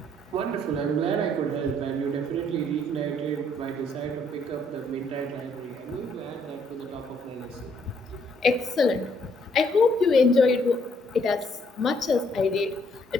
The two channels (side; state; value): both; normal; correlation 0.68